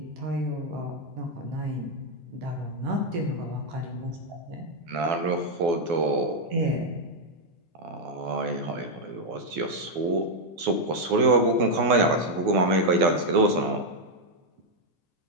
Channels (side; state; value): left; late; 12 ms